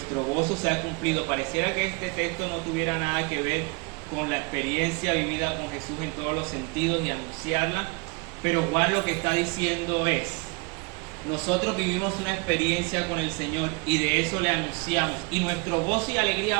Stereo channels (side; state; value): left; quieter; 28.9 dB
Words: gozo sea cumplido. Pareciera que este texto no tuviera nada que ver con la experiencia vivida con Jesús en todos los sentidos y anunciarla, pero Juan lo que está diciendo es: nosotros vivimos una experiencia con el Señor y de eso le anunciamos, y nuestro gozo y alegría